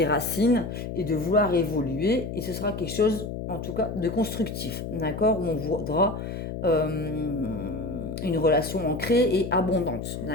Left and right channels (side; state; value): left; noise; hum, 6 dB below the sound